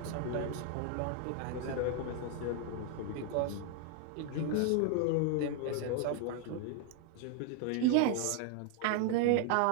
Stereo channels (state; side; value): different; both; correlation 0.00